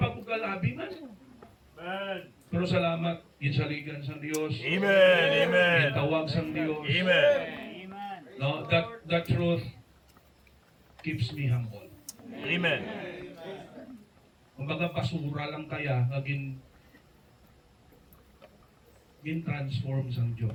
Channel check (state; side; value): identical; both; correlation 1.00